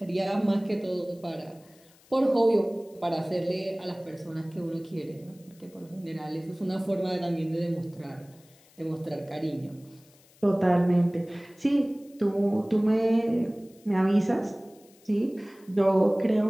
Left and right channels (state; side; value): noise; left; hiss, 28 dB below the sound